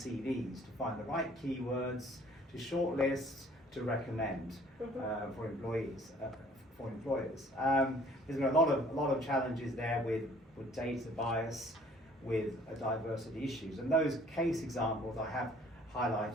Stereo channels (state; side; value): normal; both; correlation 0.55